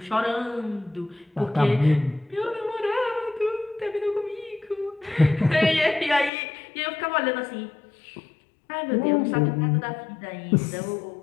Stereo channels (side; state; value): right; drops out; at 6.3 s